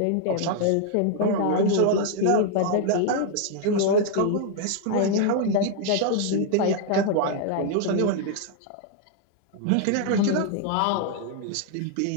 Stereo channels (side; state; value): both; different; correlation 0.00